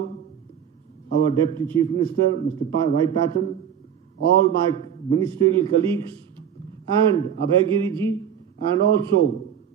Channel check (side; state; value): left; quieter; 8.7 dB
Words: our Deputy Chief Minister, Mr. Y. Patton, all my ministerial colleagues, and Abhay Giriji, and also